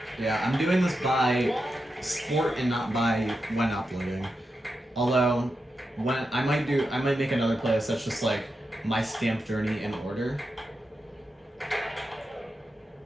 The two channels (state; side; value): normal; both; correlation 0.88